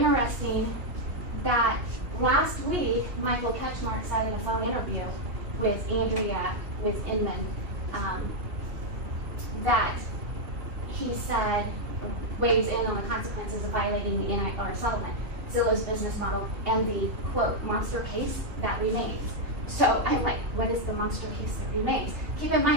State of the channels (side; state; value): left; late; 2.7 ms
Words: that last week, Michael Ketchmark said in a phone interview with Andrea with Inman that he said, weighs in on the consequences of violating the NAR settlement, Zillow's business model, and the, quote, monster case that remains. So I'm like, what is the monster case that remains? Keep in